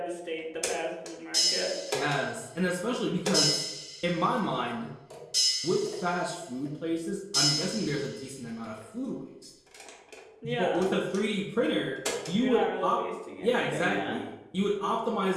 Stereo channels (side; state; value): both; identical; correlation 1.00